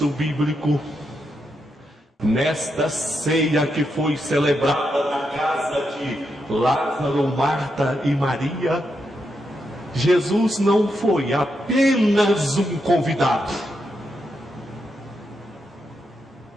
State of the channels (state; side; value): normal; both; correlation 0.83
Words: bíblico, nesta ceia que foi celebrada na casa de Lázaro, Marta e Maria, Jesus não foi apenas um convidado.